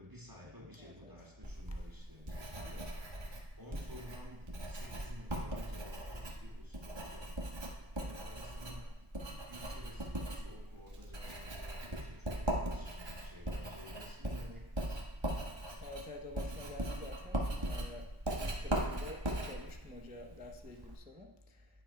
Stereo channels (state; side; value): late; left; 1.2 ms